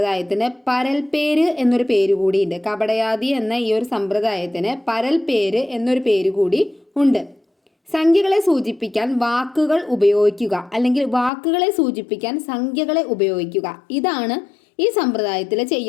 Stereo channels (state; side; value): drops out; right; at 11.3 s